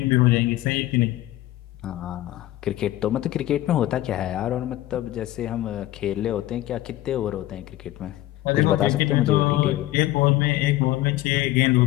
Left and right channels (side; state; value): right; quieter; 15.7 dB